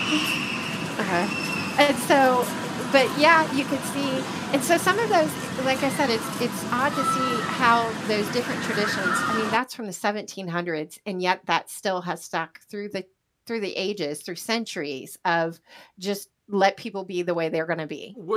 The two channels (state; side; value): identical; both; correlation 1.00